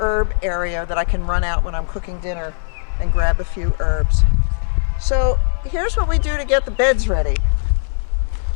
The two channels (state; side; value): silent; right; 58 dB below the other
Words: area that I can run out when I'm cooking dinner and grab a few herbs. So here's what we do to get the beds ready.